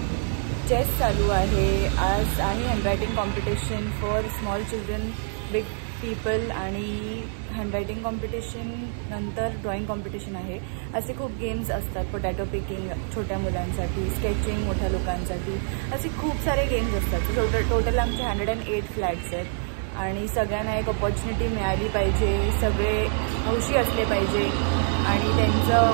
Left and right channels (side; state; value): left; silent; digital silence